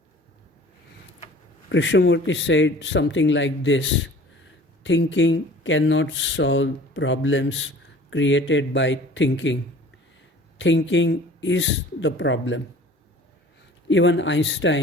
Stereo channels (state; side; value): normal; both; correlation 0.47